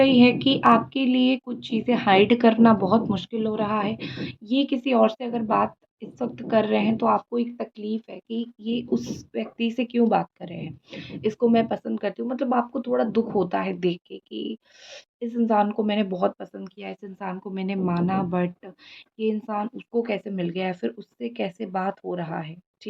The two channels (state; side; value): identical; both; correlation 1.00